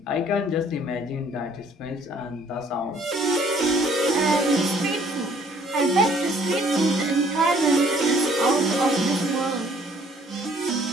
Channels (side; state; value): both; normal; correlation 0.60